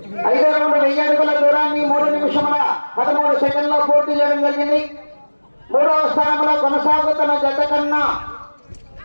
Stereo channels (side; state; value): both; inverted; correlation -1.00